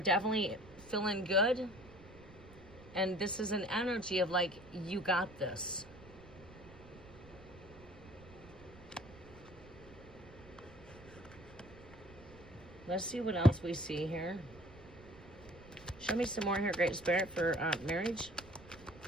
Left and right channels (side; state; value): right; noise; rumble, 19 dB below the sound